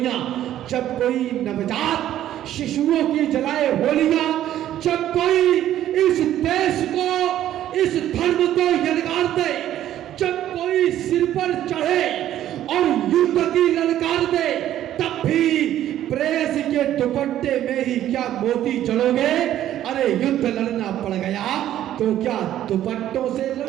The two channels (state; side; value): quieter; left; 12.2 dB